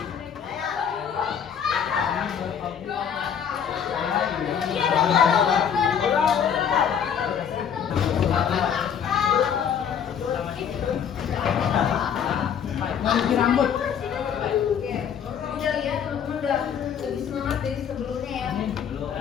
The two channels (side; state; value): right; quieter; 8.0 dB